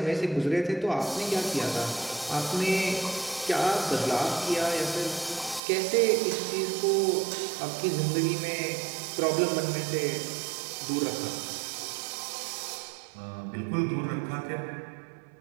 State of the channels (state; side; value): drops out; left; at 5.6 s